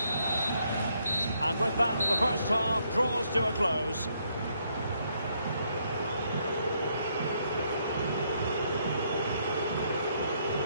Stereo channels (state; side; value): inverted; both; correlation -0.73